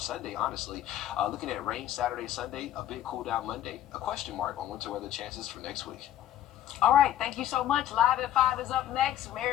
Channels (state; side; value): quieter; right; 11.7 dB